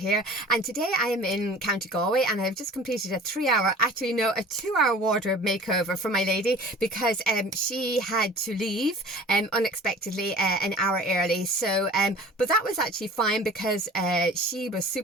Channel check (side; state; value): both; normal; correlation 0.44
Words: and today I am in County Galway and I've just completed a 2-hour wardrobe makeover for my lady because she had to leave unexpectedly an hour early. But that was actually fine because she was